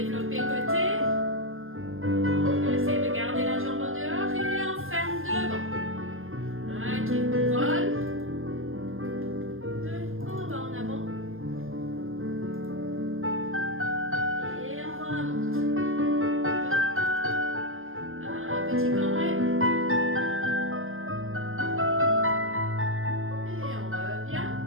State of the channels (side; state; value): left; late; 0.60 ms